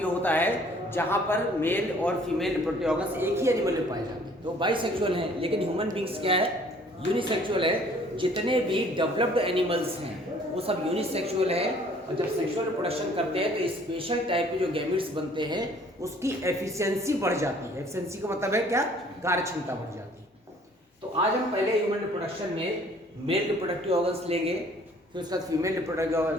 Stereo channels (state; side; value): normal; both; correlation 0.56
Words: होता है जहाँ पर मेल और फीमेल रिप्रोडक्टिव ऑर्गन्स एक ही एनिमल में पाए जाते हैं, तो बाइसेक्सुअल हैं। लेकिन ह्यूमन बींग्स क्या है, यूनिसेक्सुअल है। जितने भी डेवलप्ड एनिमल्स हैं वो सब यूनिसेक्सुअल है। और जब सेक्सुअल रिप्रोडक्शन करते हैं तो स्पेशल टाइप के जो गैमेट्स बनते हैं उसकी एफिशिएंसी बढ़ जाती है। एफिशिएंसी का मतलब है क्या, कार्य क्षमता बढ़ जाती है। तो आज हम पहले ह्यूमन रिप्रोडक्शन में मेल रिप्रोडक्टिव ऑर्गन्स लेंगे, फिर उसके बाद फीमेल रिप्रोडक्टिव